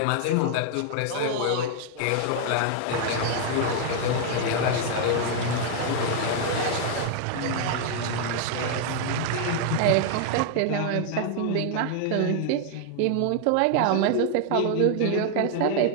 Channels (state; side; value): different; both; correlation 0.00